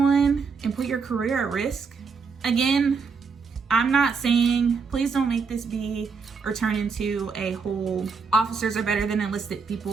and put your career at risk? Again, I'm not saying, please don't make this be or turn into a whole officers are better than enlisted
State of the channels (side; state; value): left; quieter; 5.2 dB